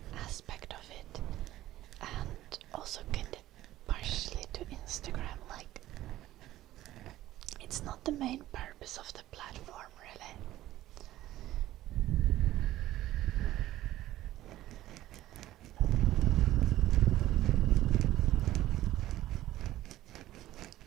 aspect of it, and also kind of partially to Instagram. Like, it's not the main purpose of the platform, really.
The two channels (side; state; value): left; quieter; 14.8 dB